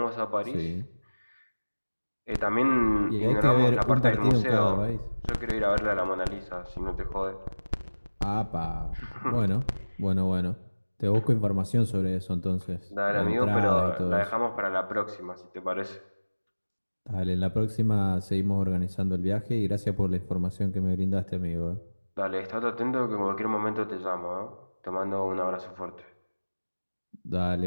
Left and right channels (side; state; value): both; inverted; correlation -1.00